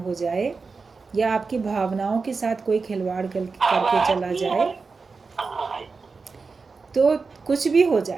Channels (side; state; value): left; quieter; 4.5 dB